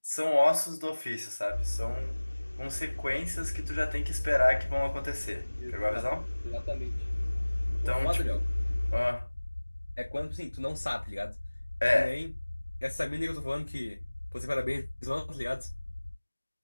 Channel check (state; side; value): inverted; both; correlation -1.00